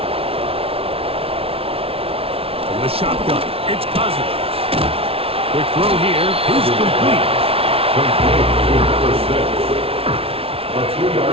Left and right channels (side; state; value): left; late; 0.27 ms